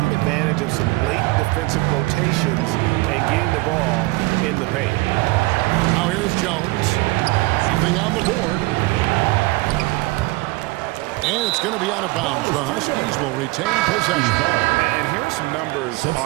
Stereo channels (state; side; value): quieter; left; 22.4 dB